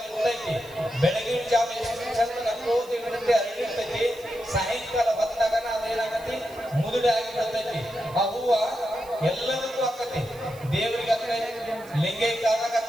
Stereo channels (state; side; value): noise; right; hiss, 22 dB below the sound